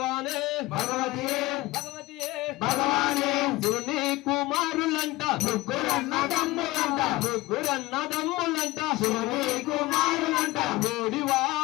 భగవతియే భగవతియే భగవానే శివుని కుమారులంట ముగ్గురన్నదమ్ములంట ముగ్గురన్నదమ్ములంట శివుని కుమారులంట ఓడివా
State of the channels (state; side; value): quieter; right; 19.4 dB